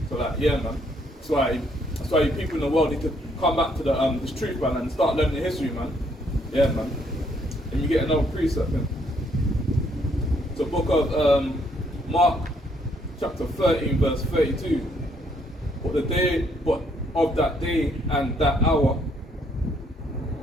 So like, yeah, man. That's why you people in the world need to come back to this truth, man, and start learning the history, man. Yeah, man. And you get another precept, man. So book of Mark, chapter 13, verse 32. But of that day and that hour,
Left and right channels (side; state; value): both; normal; correlation 0.69